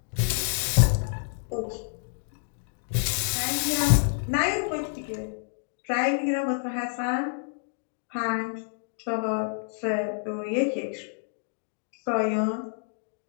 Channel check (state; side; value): silent; right; digital silence